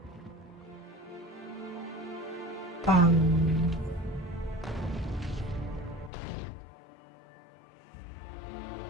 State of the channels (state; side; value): drops out; right; at 6.1 s